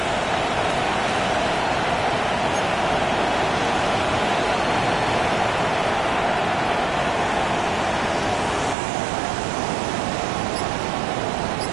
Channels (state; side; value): drops out; left; at 8.8 s